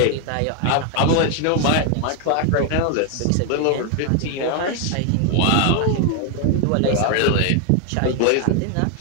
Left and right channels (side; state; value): both; different; correlation 0.00